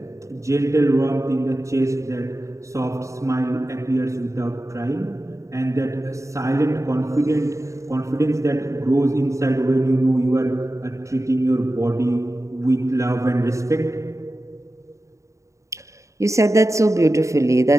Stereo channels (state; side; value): late; left; 0.15 ms